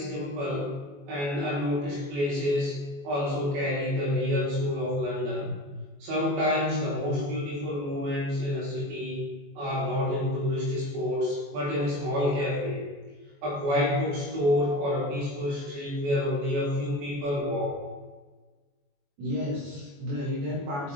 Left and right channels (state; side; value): late; left; 21 ms